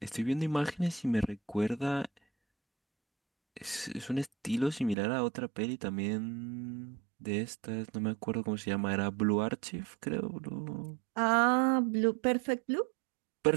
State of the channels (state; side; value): drops out; left; at 5.0 s